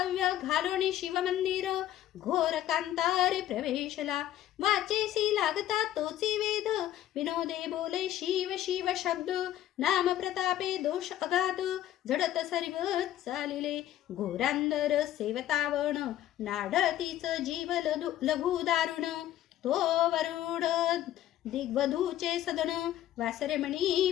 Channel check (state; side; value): quieter; right; 12.7 dB